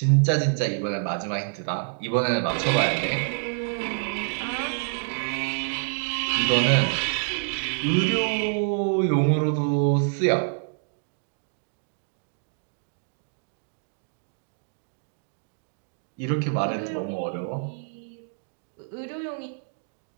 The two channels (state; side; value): silent; left; digital silence